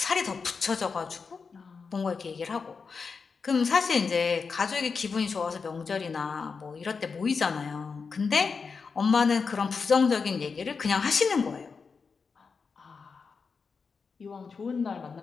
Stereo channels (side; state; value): right; quieter; 5.1 dB